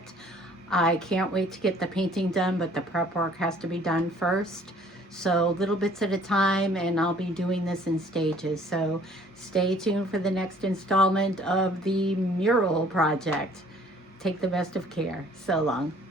I can't wait to get the painting done, but the prep work has to be done first. So little bits at a time, and I'll be doing this in stages. So stay tuned for the next installment of the mural project. Take the best of care. So long.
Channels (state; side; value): normal; both; correlation 0.56